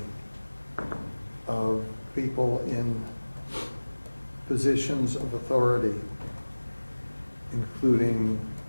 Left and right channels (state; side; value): inverted; both; correlation -1.00